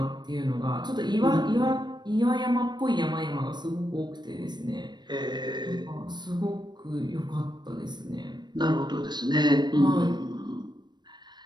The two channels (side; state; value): left; late; 0.21 ms